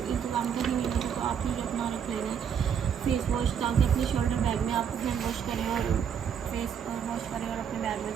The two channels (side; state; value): left; quieter; 7.9 dB